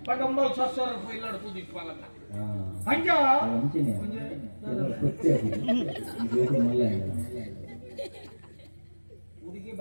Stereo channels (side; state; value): both; inverted; correlation -1.00